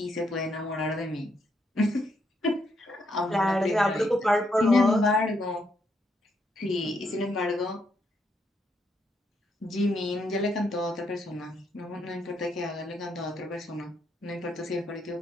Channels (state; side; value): normal; both; correlation 0.76